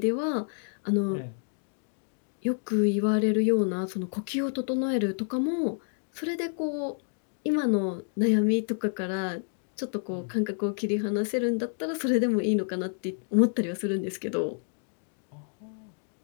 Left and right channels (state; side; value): silent; right; 57 dB below the other